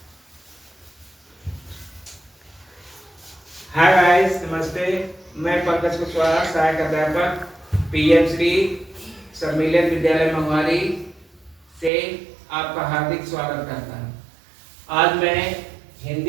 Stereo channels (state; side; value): drops out; left; at 11.9 s